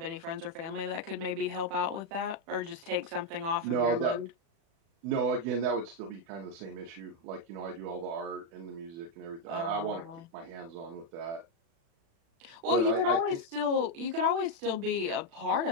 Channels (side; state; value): left; late; 36 ms